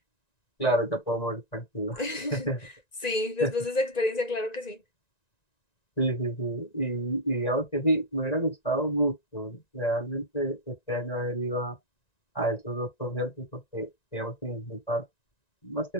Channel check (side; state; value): right; late; 1.9 ms